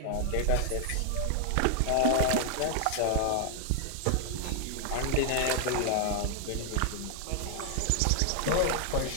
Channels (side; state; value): both; different; correlation 0.00